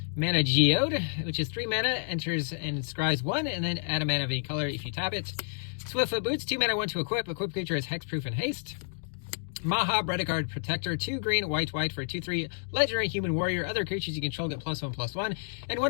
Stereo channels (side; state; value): right; silent; digital silence